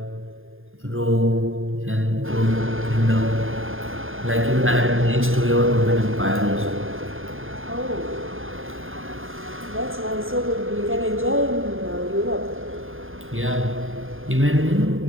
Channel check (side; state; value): left; late; 0.59 ms